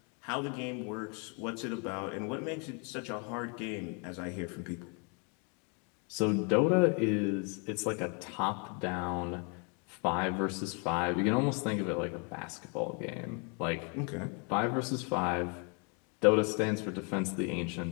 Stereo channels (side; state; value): right; quieter; 35.8 dB